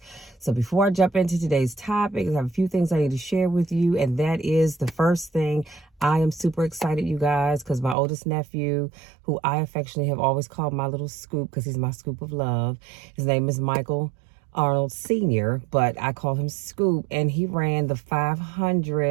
So before I jump into today's topic, I have a few things I need to share with you, and that is the first thing. I am super excited, you guys, because my oldest nephew, who I affectionately have always called my little scoop because he's my scoop of love, his name is Michael Arnold Sr., but I call him Scoop, and he ran the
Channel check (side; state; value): left; drops out; at 8.0 s